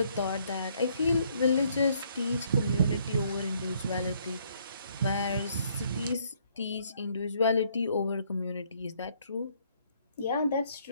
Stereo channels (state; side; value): inverted; both; correlation -0.67